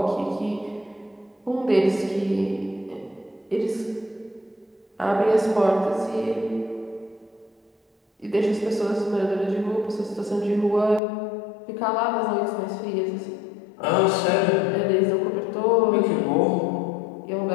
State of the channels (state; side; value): drops out; right; at 11.0 s